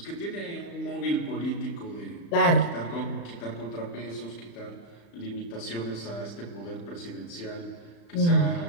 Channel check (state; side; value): late; right; 35 ms